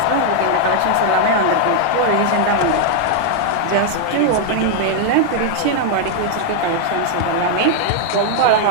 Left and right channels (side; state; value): both; different; correlation 0.00